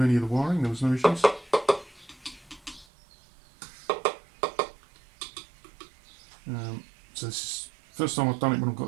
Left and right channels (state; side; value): drops out; left; at 2.9 s